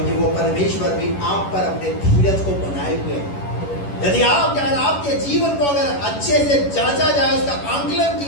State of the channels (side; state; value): right; late; 11 ms